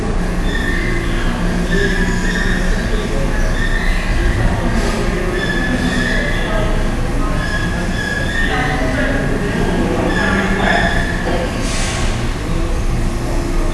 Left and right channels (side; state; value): both; identical; correlation 1.00